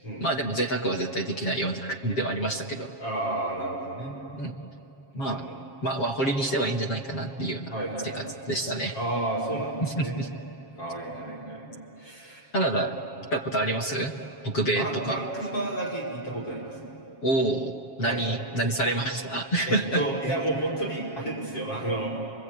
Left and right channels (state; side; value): late; right; 7.4 ms